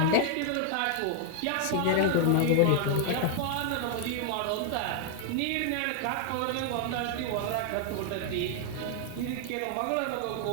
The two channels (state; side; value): different; both; correlation 0.00